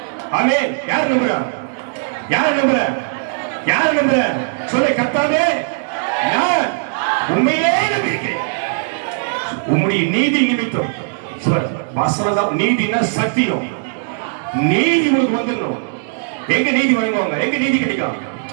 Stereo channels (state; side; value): silent; left; digital silence